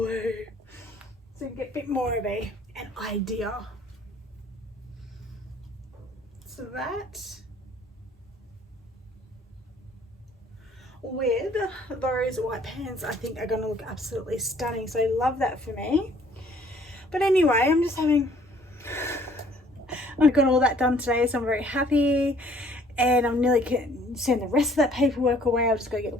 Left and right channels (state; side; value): normal; both; correlation 0.58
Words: So you get a bit more of an idea. So that with those white pants I think are going to look absolutely stunning. So I love that for me. But anyway, I'm just having... I've got all that done today, so I'm very happy. And I'm nearly going to send the rest of that paperwork away. I've just got to get